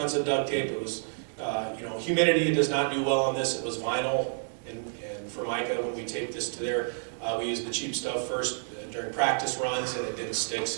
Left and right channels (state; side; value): silent; left; digital silence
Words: duct tape. It was, humidity does not do well on this. It was vinyl and Formica. When we taped this to there, we used the cheap stuff first during practice runs, and it didn't stick.